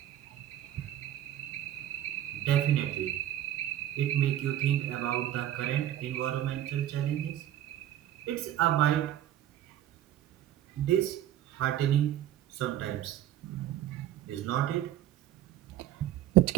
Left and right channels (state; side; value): quieter; left; 12.3 dB